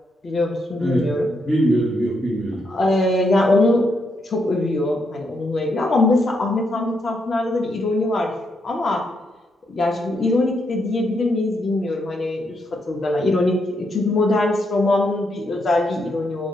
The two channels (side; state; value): both; normal; correlation 0.79